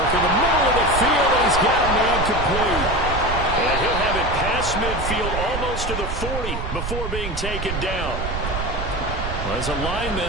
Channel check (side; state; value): right; noise; rumble, 5 dB below the sound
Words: in the middle of the field, and he's got a man complete. And he'll have it past midfield almost to the 40 before being taken down. Well, as a